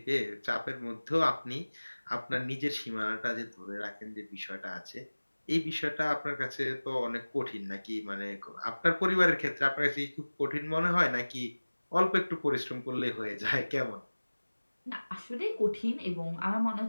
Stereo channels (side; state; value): both; inverted; correlation -1.00